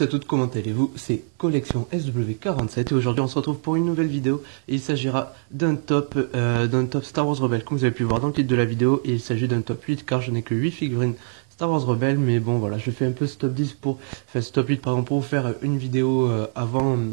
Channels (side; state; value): left; silent; digital silence